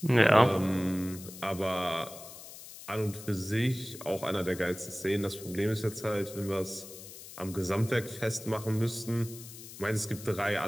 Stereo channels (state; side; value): noise; left; hiss, 15 dB below the sound